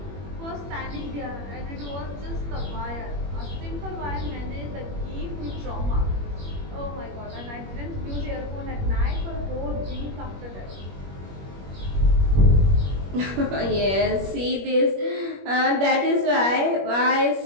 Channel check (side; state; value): left; late; 21 ms